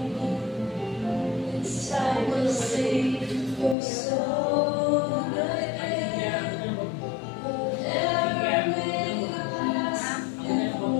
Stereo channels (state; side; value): drops out; right; at 3.8 s